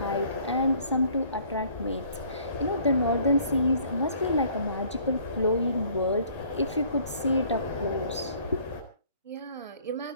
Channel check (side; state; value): both; inverted; correlation -0.58